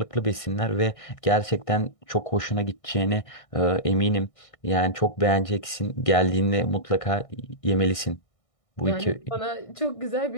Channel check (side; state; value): right; late; 1.6 ms